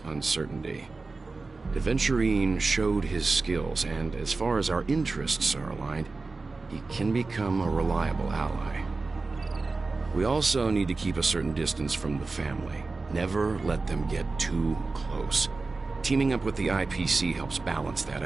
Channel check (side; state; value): left; quieter; 3.8 dB